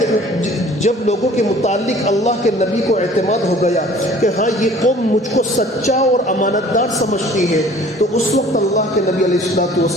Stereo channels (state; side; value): normal; both; correlation 0.50